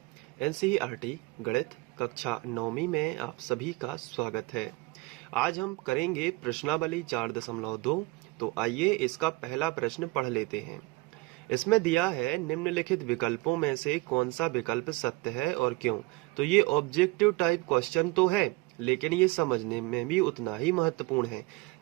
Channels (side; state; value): left; quieter; 22.7 dB